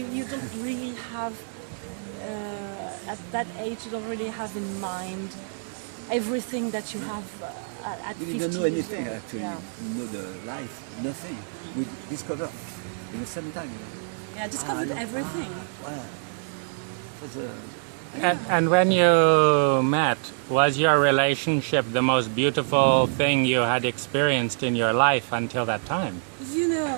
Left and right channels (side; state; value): left; silent; 61 dB below the other